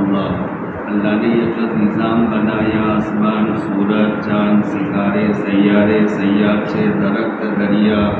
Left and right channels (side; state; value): both; identical; correlation 1.00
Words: اللہ نے یہ جو نظام بنایا، آسمان، سورج، چاند، ستارے، سیارے، سیارچے، درخت، دریا،